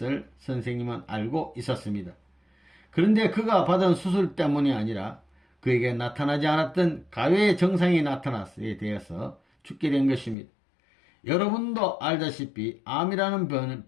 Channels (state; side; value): drops out; right; at 10.4 s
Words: 선생님은 알고 있었습니다. 그런데 그가 받은 수술 때문이 아니라 그에게 나타나지 않았던 가외의 증상이 나타났에 대해서 죽게 된 것입니다. 여러분도 알다시피 암이라는